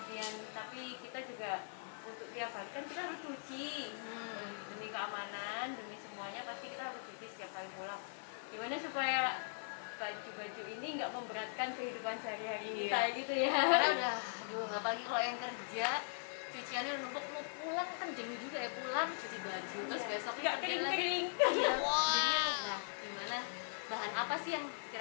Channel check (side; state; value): right; silent; digital silence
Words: tapi kita juga untuk tiap hari kan kita harus cuci, demi keamanan, demi semuanya pasti kita harus cuci setiap kali pulang. Gimana supaya baju-baju ini nggak memberatkan kehidupan sehari-hari kita gitu ya. Karena udah, apalagi kalau yang kerja cuciannya udah numpuk, mau pulang kan jenuh juga ya, pulang cuci baju terus besok nggak kering-kering. Nah, gimana bahan apa sih yang